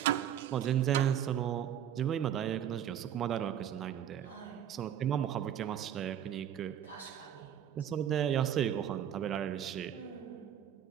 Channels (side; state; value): left; quieter; 9.9 dB